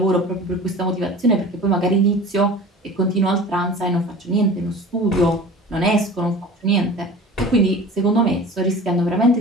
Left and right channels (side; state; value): both; normal; correlation 0.39